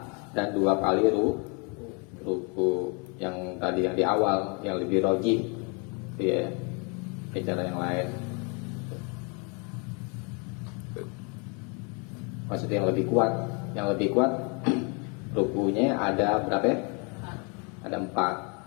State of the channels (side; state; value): right; quieter; 33.9 dB